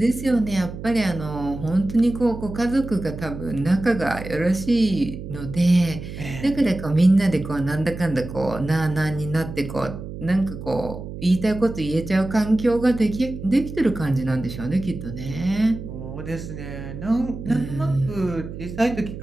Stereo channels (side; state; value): right; noise; hum, 10 dB below the sound